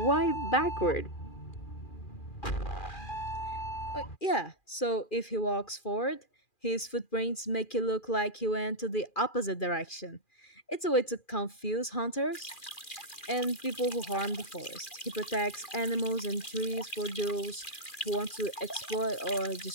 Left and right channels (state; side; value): late; right; 2.4 ms